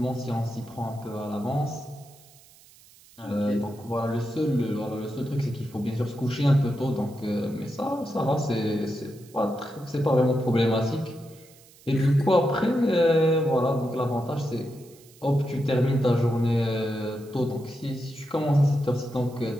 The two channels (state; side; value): noise; right; hiss, 25 dB below the sound